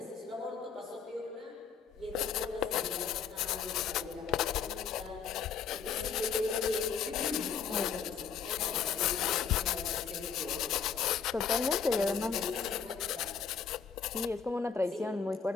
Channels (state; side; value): quieter; right; 6.6 dB